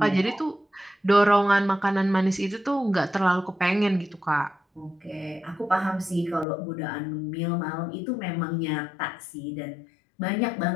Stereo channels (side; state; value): right; drops out; at 6.5 s